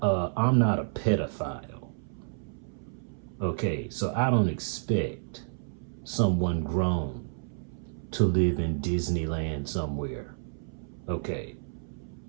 I'm not a pedophile. Okay, so I don't expect someone grown to live in Disneyland somewhere. Okay,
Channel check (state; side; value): silent; left; 58 dB below the other